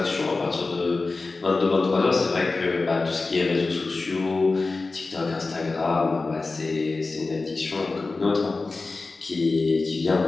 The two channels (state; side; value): quieter; right; 3.7 dB